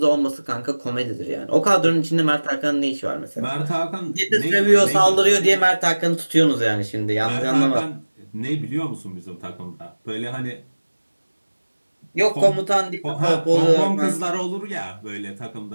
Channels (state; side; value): inverted; both; correlation -1.00